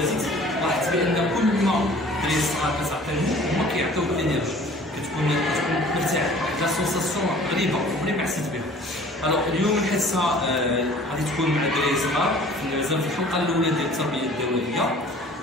لاحظت بان كل ما الدراري الصغار كتعطيهم هما كيعطيوك الانرجي، كتكون مرتاح، واحد لا سونساسيون غريبه عمري ما حسيت بها. الوغ اليوم الحصه غادي تكون مع الدراري الصغار مازال في الحلقه الاولى ديال التربيه الدوائيه.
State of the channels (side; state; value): both; normal; correlation 0.49